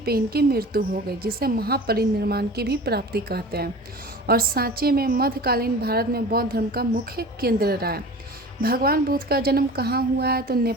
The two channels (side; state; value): both; normal; correlation 0.38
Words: इनकी मृत्यु हो गई, जिसे महापरिनिर्वाण की भी प्राप्ति कहते हैं। और सांची में मध्यकालीन भारत में बौद्ध धर्म का मुख्य केंद्र रहा है। भगवान बुद्ध का जन्म कहाँ हुआ है, तो